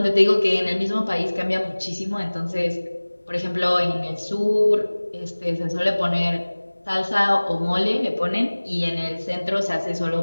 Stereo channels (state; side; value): inverted; both; correlation -1.00